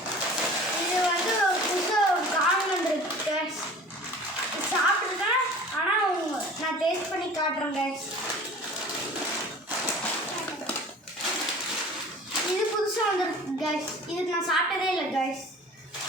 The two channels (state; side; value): normal; both; correlation 0.43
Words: இது வந்து புதுசாக காணும் வந்துருக்கு கைஸ். சாப்பிட்ருக்கேன், ஆனால் நான் டேஸ்ட் பண்ணி காட்டுறேன் கைஸ். இது புதுசாக வந்துருக்கு கைஸ். இதுக்கு நான் சாப்பிட்டதே இல்லை கைஸ்.